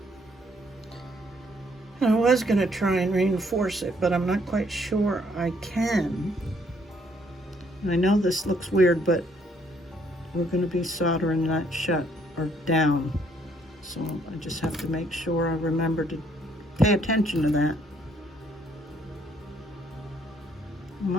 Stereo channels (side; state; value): both; normal; correlation 0.68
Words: I was going to try and reinforce it, but I'm not quite sure I can. And I know this looks weird, but we're going to be soldering that shut or down. So I just have to make sure I remember to pay attention to that. Am